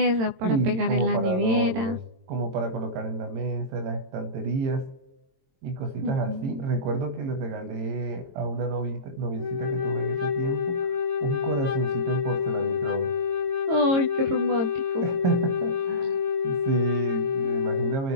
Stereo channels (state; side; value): late; left; 22 ms